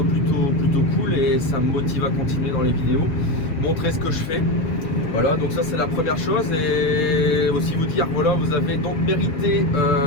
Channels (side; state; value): right; late; 6.9 ms